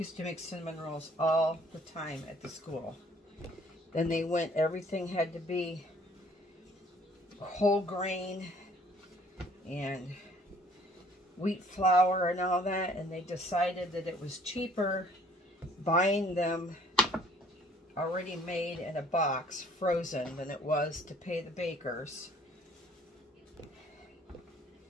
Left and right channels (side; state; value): both; normal; correlation 0.58